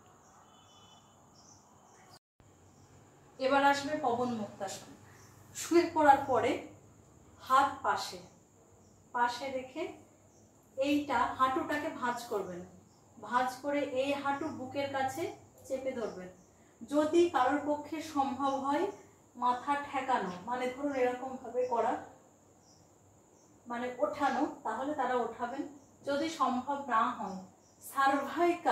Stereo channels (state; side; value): identical; both; correlation 1.00